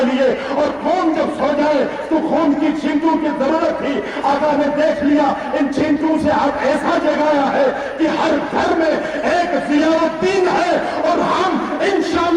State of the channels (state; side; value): identical; both; correlation 1.00